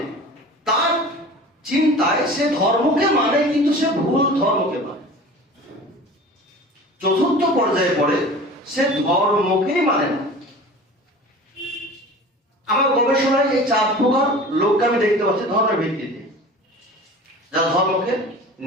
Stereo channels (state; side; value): normal; both; correlation 0.39